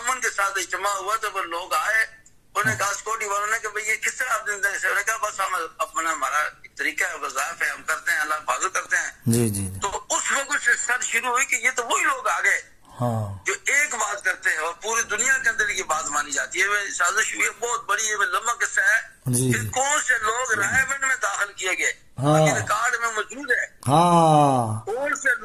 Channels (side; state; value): both; identical; correlation 1.00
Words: کے ساتھ اجتماع ہوا تو وہ لوگ آئے، انہوں نے کہا سکیورٹی والوں نے کہ بھئی یہ کس طرح آپ نے کہا بس ہم اپنا ہمارا طریقہ ہے، وظائف ہے، ہم کرتے ہیں، اللہ حفاظت کرتے ہیں. جی جی. تو اس وقت سے سر شروع ہوئی کہ یہ تو وہی لوگ آ گئے جو ایک بات کرتے ہیں اور پوری دنیا کے اندر کی بات مانی جاتی ہے. سازش ہوئی ہے بہت بڑی، یہ لمبا قصہ ہے. پھر کون سے لوگ رائے میں داخل کیے گئے، ریکارڈ میں موجود ہے. کون سے